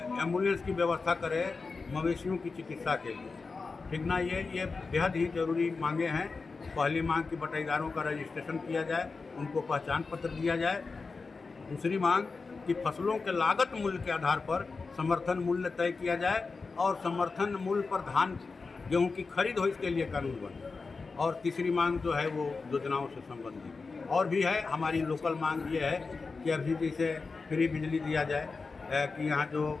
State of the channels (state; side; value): quieter; right; 4.3 dB